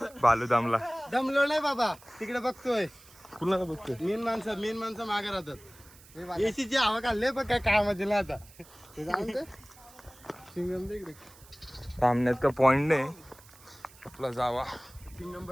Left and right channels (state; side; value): noise; right; hiss, 23 dB below the sound